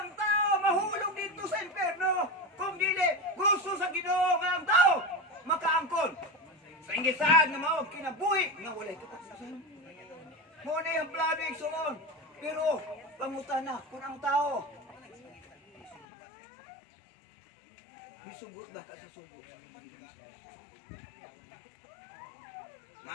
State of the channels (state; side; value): drops out; right; at 16.1 s